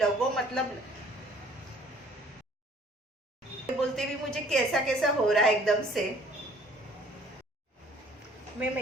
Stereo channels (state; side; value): normal; both; correlation 0.56